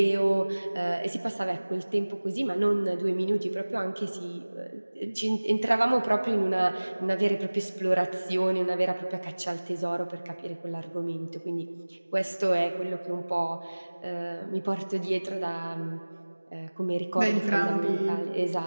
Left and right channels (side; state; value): both; inverted; correlation -1.00